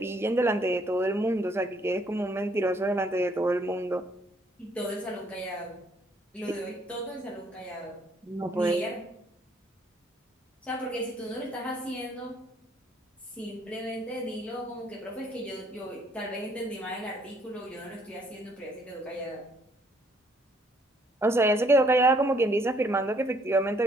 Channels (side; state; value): both; normal; correlation 0.66